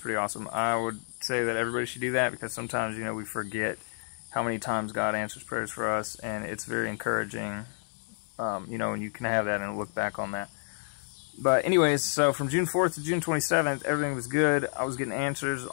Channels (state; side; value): silent; right; 58 dB below the other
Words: awesome. I would say that everybody should do that because sometimes, we forget how many times God answers prayers for us, and it's very encouraging. And you can have that and look back on that. But anyways, so from June 4th to June 27th, everything was good. I was getting answers,